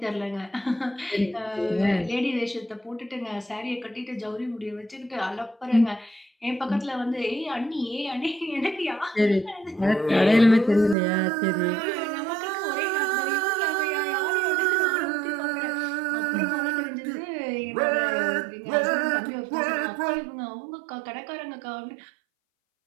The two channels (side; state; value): left; drops out; at 11.0 s